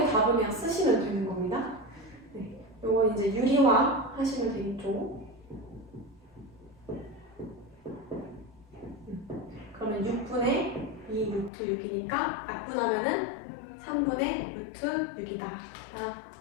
답을 그냥 쓰시면 되는 겁니다. 네, 요거 이제 유리화 하시면 되겠죠. 그러면 6분의 2 루트 6이니까 약분하면은 3분의 루트 6이다.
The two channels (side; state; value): right; drops out; at 11.5 s